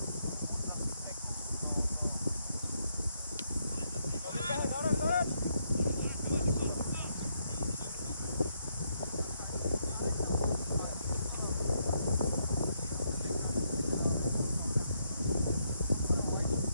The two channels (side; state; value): both; inverted; correlation -0.76